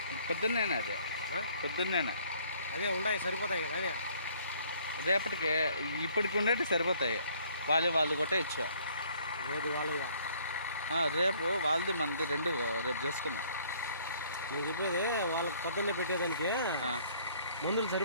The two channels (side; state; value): both; inverted; correlation -0.60